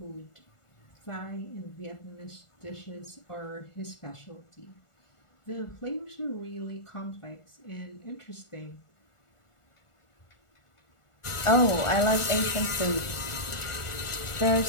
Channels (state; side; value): late; right; 1.4 ms